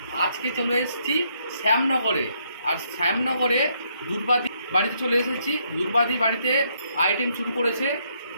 আজকে চলে এসেছি শ্যামনগরে। আর শ্যামনগরে দুর্বাদি বাড়িতে চলে এসেছি। দুর্বাদি বাড়িতে আইটেম শুরু করেছে,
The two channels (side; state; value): both; inverted; correlation -0.73